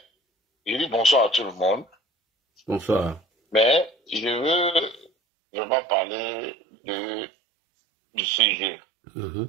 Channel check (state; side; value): drops out; left; at 5.1 s